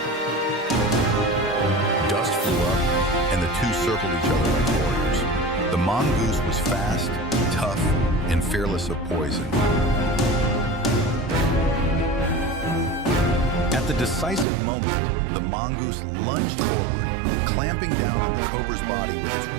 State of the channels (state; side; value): drops out; left; at 14.5 s